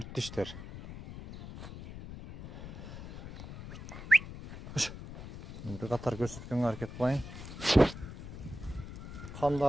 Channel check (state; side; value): noise; left; rumble, 11 dB below the sound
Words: tişler. Bir qatar көрсөткөнгө аракет кылайын.